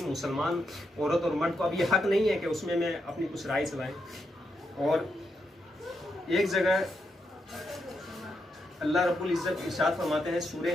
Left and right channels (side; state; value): both; normal; correlation 0.82